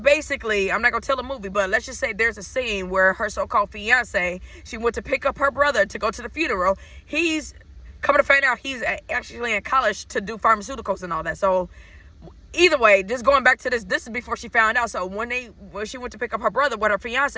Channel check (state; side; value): identical; both; correlation 1.00